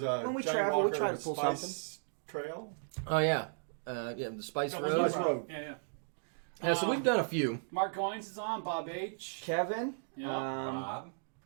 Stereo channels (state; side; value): silent; left; digital silence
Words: a when we Johnny travel, we Walker try to pull Spice something. Trail. Oh, yeah. The Spice No, Road. Spice Road. Yeah. Yeah, so we've done a few. Mark Goins is on. Bob H. Kevin. Yeah. Bob.